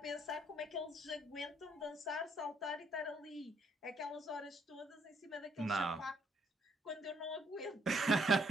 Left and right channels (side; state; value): both; normal; correlation 0.68